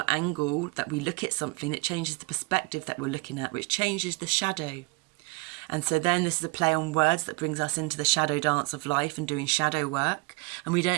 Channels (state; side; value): quieter; left; 26.0 dB